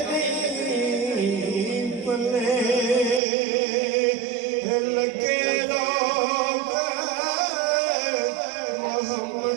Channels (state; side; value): drops out; left; at 3.2 s